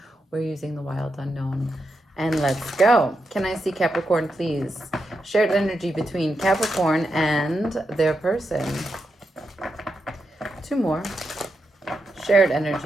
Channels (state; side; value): normal; both; correlation 0.85